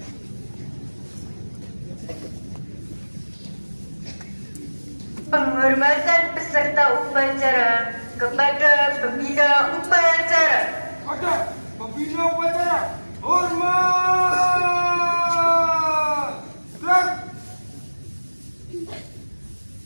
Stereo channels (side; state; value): both; inverted; correlation -1.00